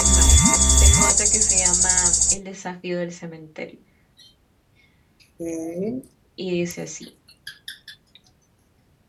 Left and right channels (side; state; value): both; identical; correlation 1.00